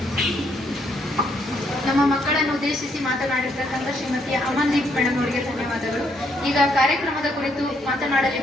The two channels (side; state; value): both; normal; correlation 0.73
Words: ನಮ್ಮ ಮಕ್ಕಳನ್ನು ಉದ್ದೇಶಿಸಿ ಮಾತನಾಡಿರ್ತಕ್ಕಂಥ ಶ್ರೀಮತಿ ಅಮನ್ದೀಪ್ ಮೇಡಮ್ ಅವರಿಗೆ ಧನ್ಯವಾದಗಳು. ಈಗ ಕಾರ್ಯಕ್ರಮದ ಕುರಿತು